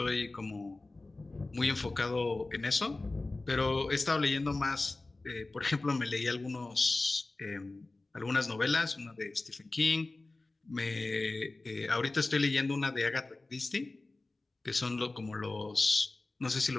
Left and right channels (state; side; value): quieter; right; 3.1 dB